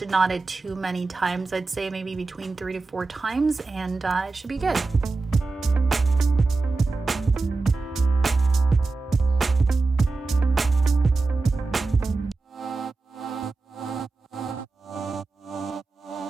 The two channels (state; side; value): quieter; left; 3.7 dB